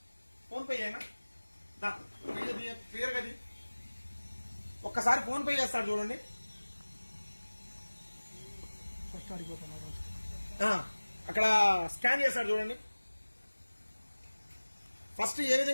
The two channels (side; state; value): both; inverted; correlation -1.00